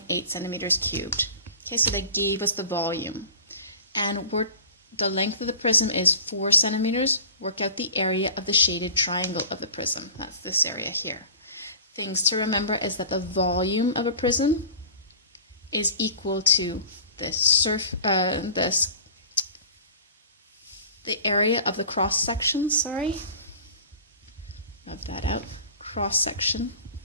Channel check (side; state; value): both; inverted; correlation -0.41